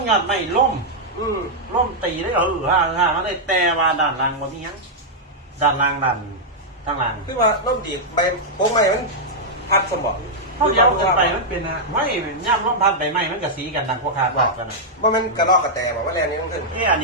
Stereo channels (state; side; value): normal; both; correlation -0.06